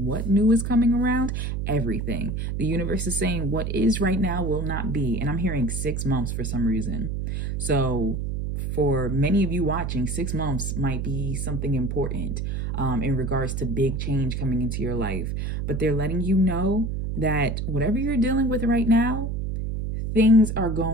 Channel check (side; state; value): right; noise; hum, 2 dB below the sound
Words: What new is coming around? Everything. The universe is saying what is right now will not be. And I'm hearing 6 months for some reason. So for many of you watching, 6 months might be something important in regards to big change coming into your life. But they're letting you know that whatever you're dealing with right now, things are